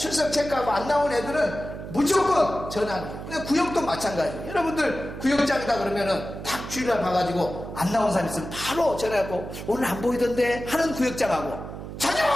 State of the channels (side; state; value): right; noise; hum, 10 dB below the sound